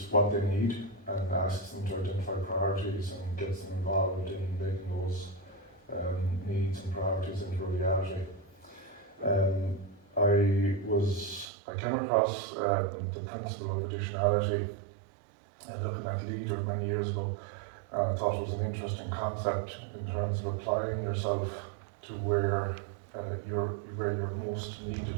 what they need and asks them to identify priorities and gets them involved in making those needs and priorities into a reality. I came across the principle of additionality looking at Leader many years ago, and I thought it was an interesting concept in terms of applying yourself to where you're most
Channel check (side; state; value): left; drops out; at 11.5 s